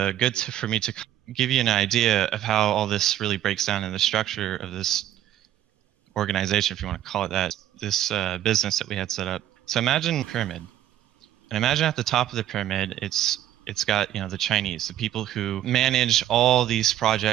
for me to give you an idea of how all this really breaks down in the structure of this organization, if you want to call it that, this business that we had set up. So imagine a pyramid, and imagine at the top of the pyramid, it's got, you know, the Chinese, the people who manage all these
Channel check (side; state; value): left; quieter; 12.1 dB